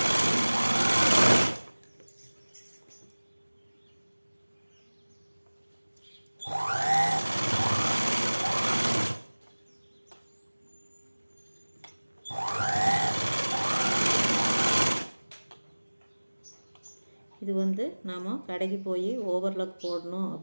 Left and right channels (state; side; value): inverted; both; correlation -1.00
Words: இது நாம் கடைக்கு போய் ஓவர்லாக் போடணும்